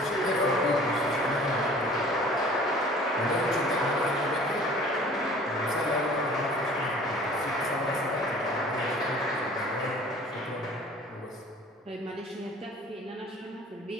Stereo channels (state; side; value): normal; both; correlation 0.48